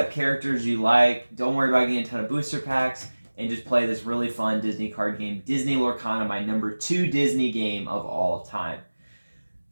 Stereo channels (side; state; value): both; inverted; correlation -1.00